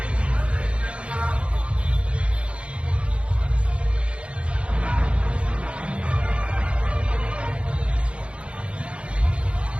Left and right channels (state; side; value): late; left; 0.059 ms